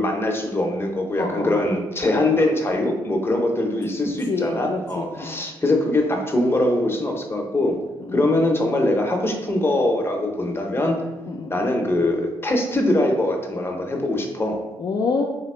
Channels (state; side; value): normal; both; correlation 0.77